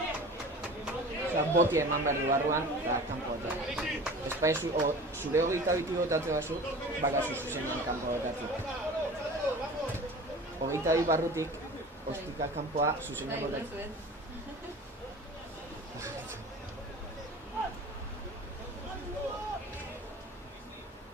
Osea, botia eman behar du barruan, eta kanpo botatzen. Espaizu, zure 22 botatze bazu, bakazu zuzenean kanpo botatzen. 22 barrutik, ostika kanpoa zuzenean botatzen.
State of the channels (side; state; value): both; normal; correlation 0.39